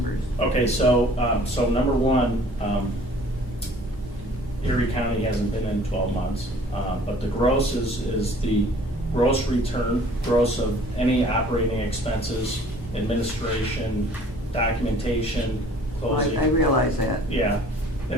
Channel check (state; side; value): normal; both; correlation 0.52